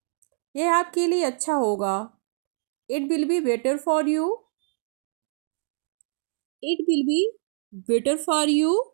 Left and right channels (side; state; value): left; silent; 61 dB below the other